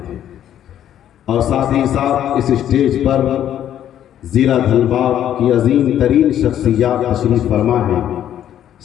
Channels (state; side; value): quieter; right; 10.8 dB